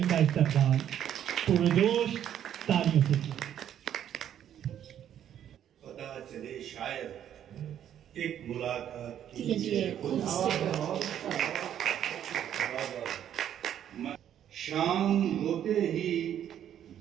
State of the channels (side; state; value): left; quieter; 10.2 dB